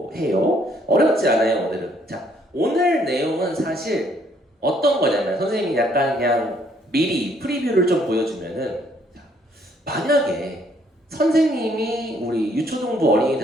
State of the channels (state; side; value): normal; both; correlation 0.66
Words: 해요. 어렵지 않아요 오늘은. 자, 오늘 내용은 사실 어떤 거냐면 선생님이 약간 그냥 미리 프리뷰를 좀 보여주면은 자, 만약에 선생님이 우리 유초등부